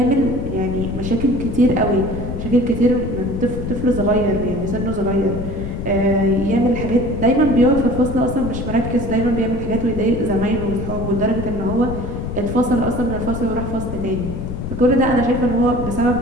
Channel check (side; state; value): left; noise; rumble, 6 dB below the sound